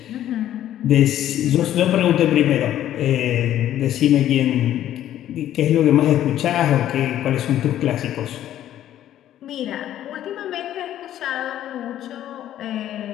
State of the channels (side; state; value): right; quieter; 12.0 dB